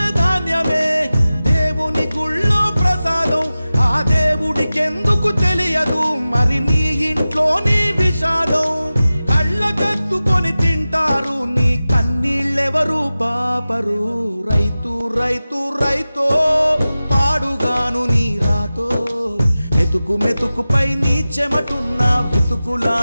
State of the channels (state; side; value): inverted; both; correlation -0.96